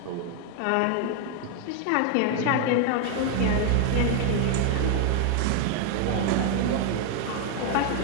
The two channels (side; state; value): both; different; correlation 0.00